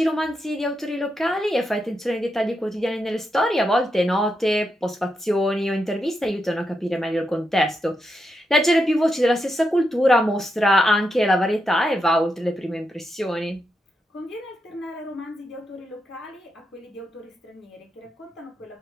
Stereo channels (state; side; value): normal; both; correlation 0.84